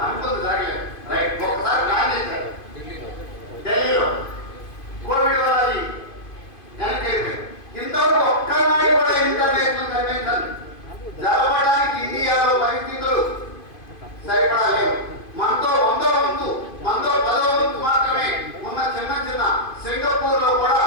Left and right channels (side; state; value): right; late; 2.5 ms